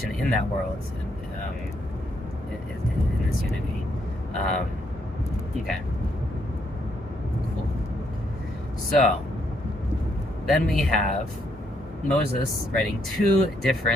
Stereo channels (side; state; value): both; normal; correlation 0.74